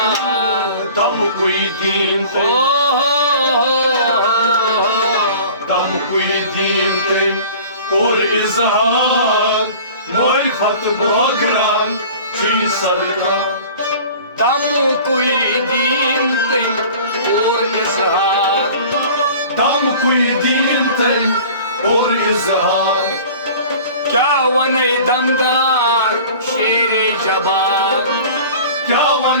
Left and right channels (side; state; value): both; inverted; correlation -0.43